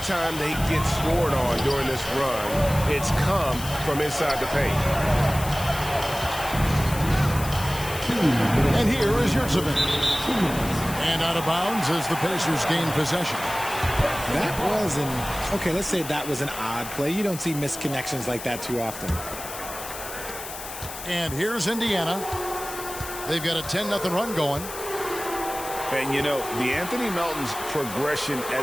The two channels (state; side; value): noise; left; hiss, 10 dB below the sound